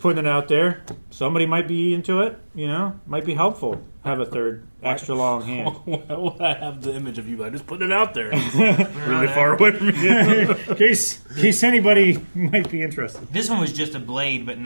it out there. Somebody might be into it. Might be helpful. Have a third extra long hand. Why would I have the image of you? I just put it out there. Really far away from you. in case anybody might be interested. This one was just a blade, but in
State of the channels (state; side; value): inverted; both; correlation -1.00